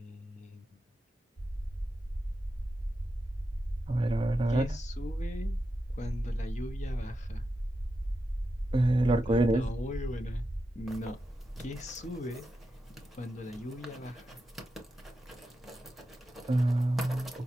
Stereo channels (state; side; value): normal; both; correlation 0.89